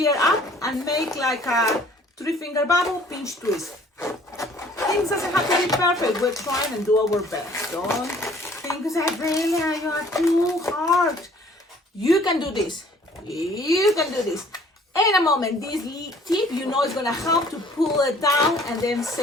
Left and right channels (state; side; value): normal; both; correlation 0.56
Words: air up and make like a 3-finger bubble, pinch twist. Things doesn't have to be perfect, we're trying and do our best. Don't think that really you are too hard. You can do this, you can do this. In a moment, this tip, is gonna help to pull it down and then